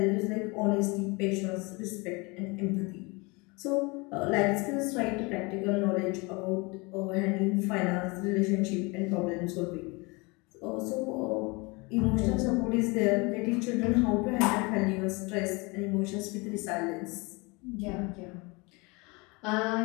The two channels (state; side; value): quieter; right; 27.2 dB